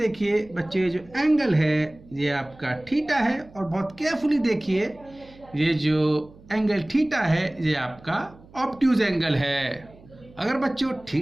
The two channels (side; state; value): right; noise; hum, 24 dB below the sound